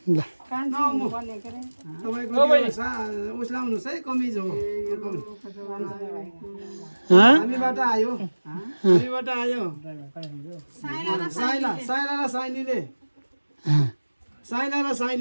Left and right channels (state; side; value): inverted; both; correlation -1.00